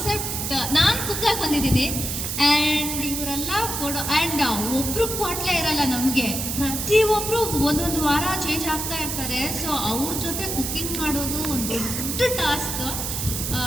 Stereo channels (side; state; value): right; noise; hiss, 3 dB below the sound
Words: ನಾನು ಕುಕ್ಕಾಗಿ ಬಂದಿದ್ದೀನಿ ಆ್ಯಂಡ್ ಇವರೆಲ್ಲ ಕೊಡೋ ಆ್ಯಂಡ್ ಒಬ್ರು ಕ್ವಾಟ್ಲೆ ಇರಲ್ಲ ನಮಗೆ. ಪ್ರತಿಯೊಬ್ಬರು ಒಂದೊಂದು ವಾರ ಚೇಂಜ್ ಆಗ್ತಾ ಇರ್ತಾರೆ. ಸೊ ಅವ್ರ ಜೊತೆ ಕುಕ್ಕಿಂಗ್ ಮಾಡೋದು ಒಂದು ದೊಡ್ಡ ಟಾಸ್ಕ್.